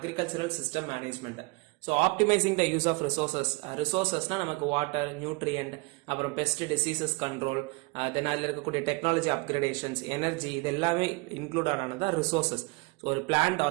system management. So optimizing the use of resources na நமக்கு water, nutrient, அப்புறம் pest diseases control, then அதில் இருக்கக்கூடிய technology upgradations, energy இதெல்லாமே include ஆனது resources. So ஒரு plant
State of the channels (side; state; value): left; quieter; 26.5 dB